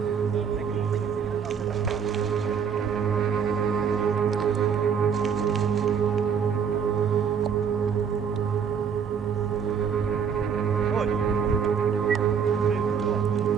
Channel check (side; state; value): left; quieter; 7.0 dB